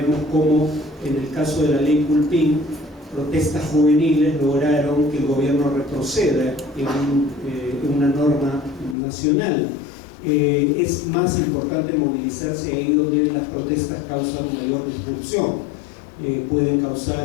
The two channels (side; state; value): right; drops out; at 9.0 s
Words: cómo en el caso de la ley Culpín, protestas juveniles lograron que el gobierno retroceda en una norma nacional. Es más importante movilizarse ahí donde las protestas causan mayor disrupción. Pueden